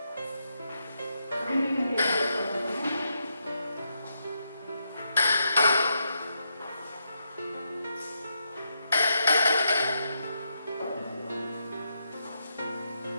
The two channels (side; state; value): both; inverted; correlation -0.82